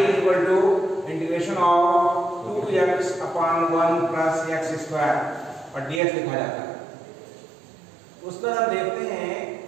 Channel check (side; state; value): left; drops out; at 6.0 s